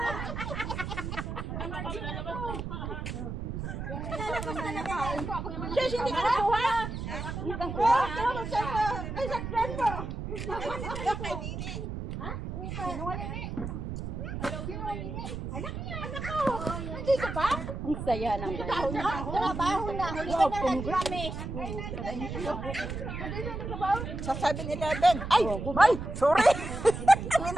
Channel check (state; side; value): noise; right; rumble, 6 dB below the sound